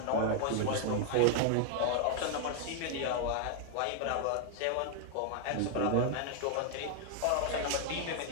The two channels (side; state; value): both; different; correlation 0.00